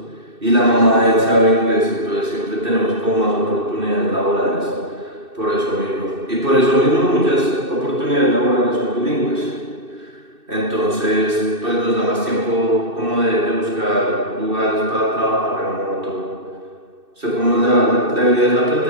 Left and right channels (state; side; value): late; left; 2.6 ms